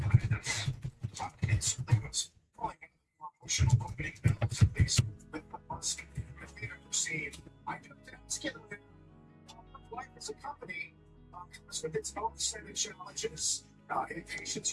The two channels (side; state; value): both; identical; correlation 1.00